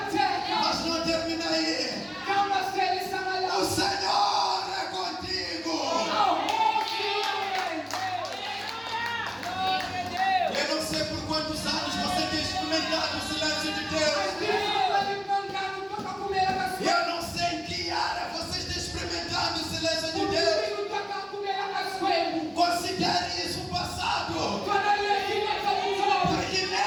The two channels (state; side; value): identical; both; correlation 1.00